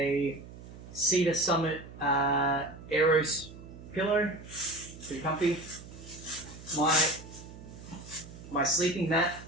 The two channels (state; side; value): noise; right; hum, 16 dB below the sound